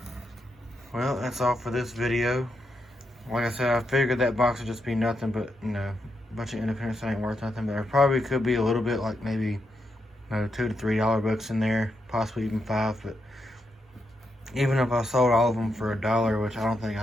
Well, that's all for this video. Like I said, I figured that box would just be nothing but, you know, a bunch of independents that ain't worth nothing. But there probably could be a little bit, like maybe, you know, $2 to $3 books in there, possibly even $5. But even if I sold all of them for $1, which I don't think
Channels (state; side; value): normal; both; correlation 0.83